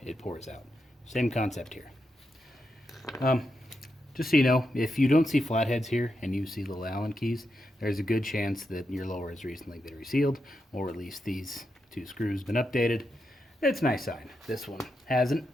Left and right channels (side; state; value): both; normal; correlation 0.85